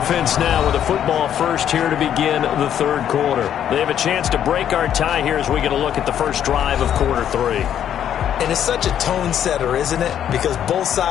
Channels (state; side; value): quieter; right; 9.9 dB